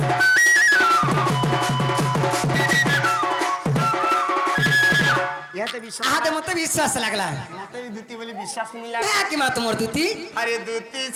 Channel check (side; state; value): both; identical; correlation 1.00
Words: ইহাতে বিশ্বাস আহাতে মতে বিশ্বাস লাগলা ইহাতে দূতি বলি বিশ্বাস মিলা কি মা তোমার দুতি আরে দূতি